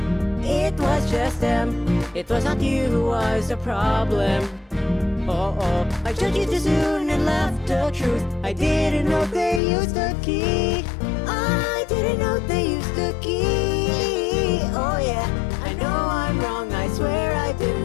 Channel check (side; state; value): right; drops out; at 9.6 s